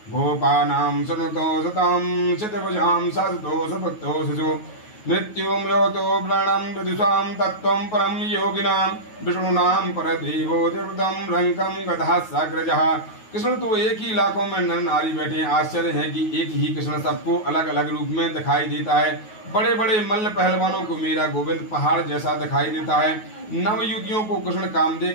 गोपानाम सततो सताम शतभुजाम सतो सपत्तो सजो मृत्युम योतो प्राणम विदुषाम तत्वं परम योगिनां विष्णुनां परदेवो देवतम रंकम गधा साग्रजः। कृष्ण तो एक ही लाखों में नर नारी बैठे हैं। आश्चर्य है कि एक ही कृष्ण सबको अलग अलग रूप में दिखाई देता है। बड़े बड़े मल्ल पहलवानों को मेरा गोविंद पहाड़ जैसा दिखाई देता है। नव युवतियों को कृष्ण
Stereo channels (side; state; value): right; late; 9.3 ms